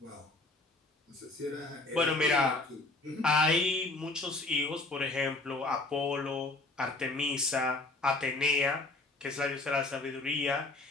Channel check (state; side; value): quieter; right; 3.1 dB